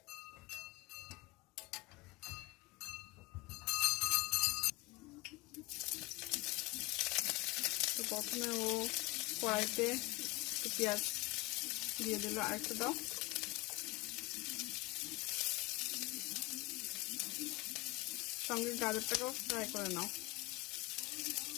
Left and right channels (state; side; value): quieter; right; 22.2 dB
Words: তো প্রথমে ও কড়াইতে পেঁয়াজ দিয়ে দিল, আরেকটু দাও, সঙ্গে গাজরটাকেও ফ্রাই করে নাও।